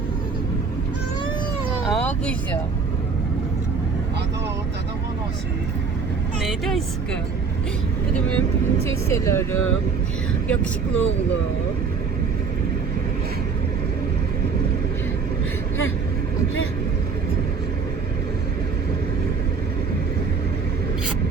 Aa, qızım. Dedem anası. Neydi aşkım? Bu da benim prenseslelerim. Yakışıklı oğlum.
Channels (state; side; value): quieter; left; 5.2 dB